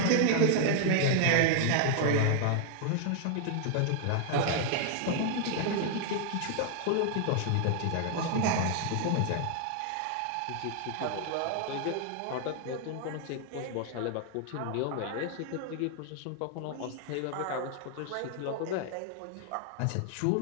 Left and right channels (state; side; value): different; both; correlation 0.00